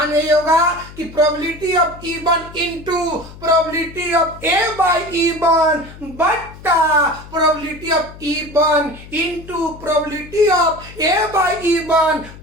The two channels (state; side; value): noise; left; hum, 17 dB below the sound